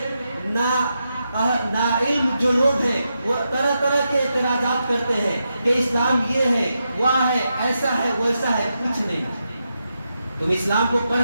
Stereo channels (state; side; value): inverted; both; correlation -0.86